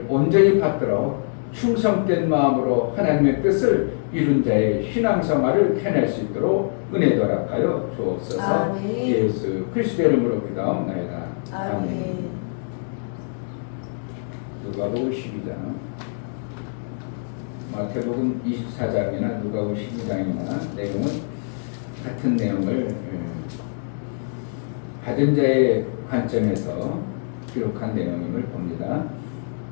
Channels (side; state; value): right; silent; digital silence